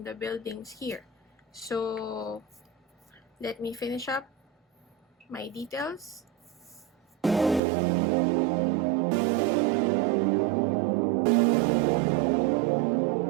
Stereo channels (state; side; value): drops out; left; at 7.6 s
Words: the buildings here. So let me finish up my details.